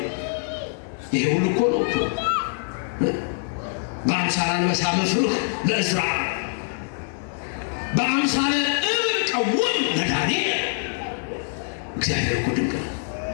ይሄ ሁሉ እኮ ነው እኮ በአምሳለ አንበሳ መፍርህ ለእዝራ፣ በአምሳለ እብን ቀውም ለዳንኤል። እግዚአብሔር እኮ ድንቅ ነው።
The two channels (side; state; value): right; silent; digital silence